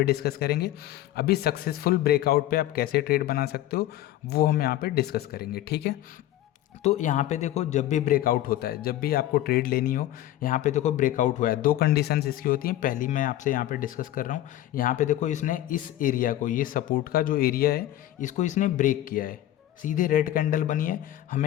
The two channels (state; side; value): quieter; right; 13.8 dB